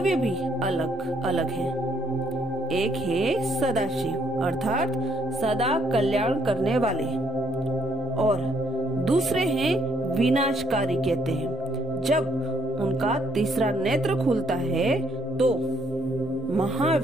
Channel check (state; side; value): normal; both; correlation 0.69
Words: भी अलग अलग हैं। एक है सदाशिव अर्थात सदा कल्याण करने वाले और दूसरे हैं विनाशकारी कहते हैं। जब उनका तीसरा नेत्र खुलता है तो